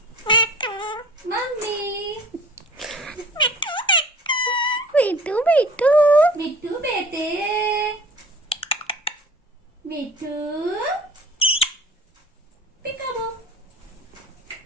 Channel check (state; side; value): normal; both; correlation 0.45